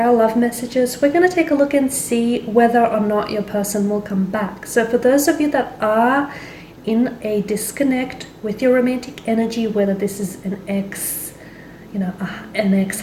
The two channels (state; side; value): identical; both; correlation 1.00